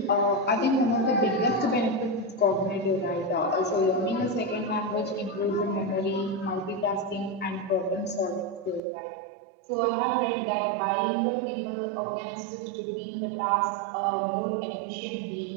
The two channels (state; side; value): drops out; left; at 8.8 s